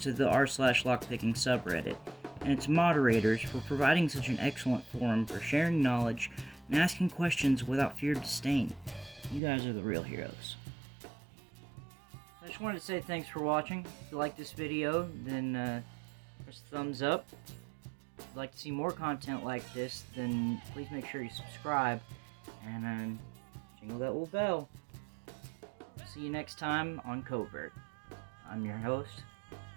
the r/lockpicking subreddit and its moderators for providing such an excellent forum for sharing knowledge and asking questions without fear of disdain. You guys are the real heroes. I just wanted to say thanks for watching. If you like this video, then press the thumbs up. If you'd like to see more content like this, then please make sure you subscribe and jingle that little bell. See you next time on Covert. I'm your host,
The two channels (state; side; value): drops out; left; at 9.4 s